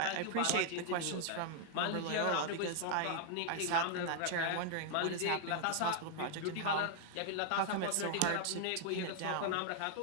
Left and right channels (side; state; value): both; different; correlation 0.00